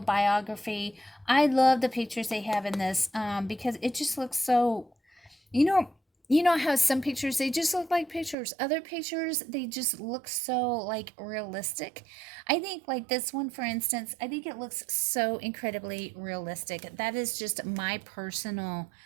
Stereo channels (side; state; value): left; drops out; at 8.3 s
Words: I love the pictures they have in this because it just looks so, you know, how some pictures they just look like pictures. Other pictures they just look so like realistic. I think like this one, for instance, I think it looks so incredibly realistic. That is just my personal